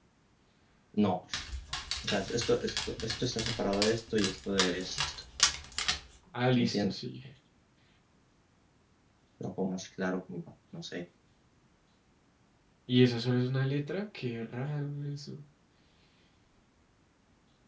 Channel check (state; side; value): identical; both; correlation 1.00